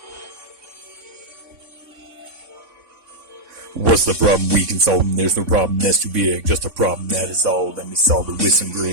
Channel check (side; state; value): left; late; 3.6 ms